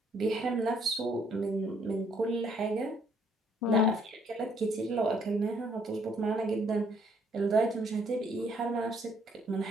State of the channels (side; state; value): both; normal; correlation 0.66